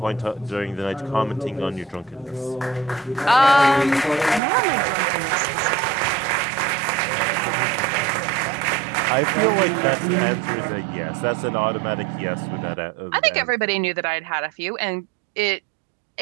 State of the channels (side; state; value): left; drops out; at 4.4 s